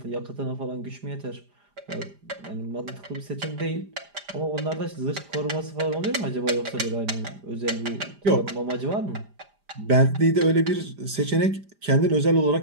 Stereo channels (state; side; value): late; left; 5.0 ms